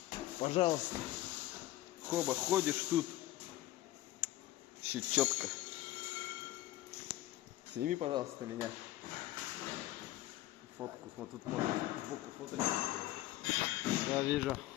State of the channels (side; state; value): right; quieter; 15.8 dB